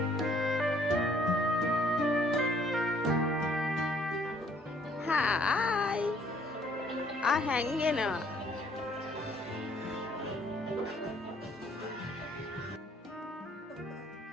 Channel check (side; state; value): both; normal; correlation 0.63